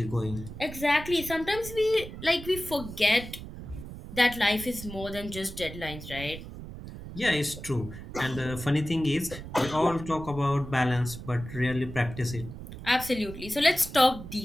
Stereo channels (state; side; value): noise; right; rumble, 11 dB below the sound